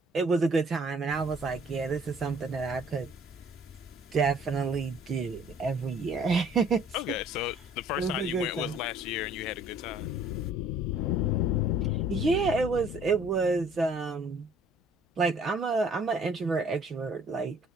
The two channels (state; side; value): normal; both; correlation 0.56